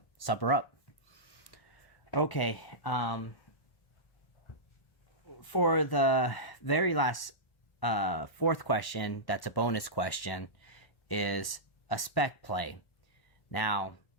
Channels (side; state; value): right; late; 1.1 ms